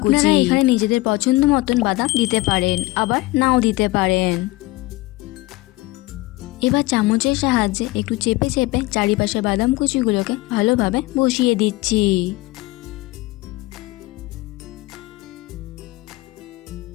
কুচি। আপনারা এখানে নিজেদের পছন্দ মতন বাদাম দিতে পারেন, আবার নাও দিতে পারেন। এবার চামচের সাহায্যে একটু চেপে চেপে চারিপাশে বাদাম কুচিগুলোকে ভালোভাবে বসিয়ে দিচ্ছি।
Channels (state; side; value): quieter; right; 20.1 dB